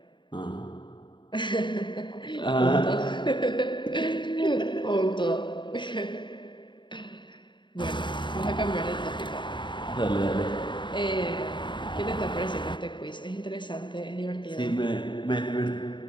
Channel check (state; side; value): late; right; 0.23 ms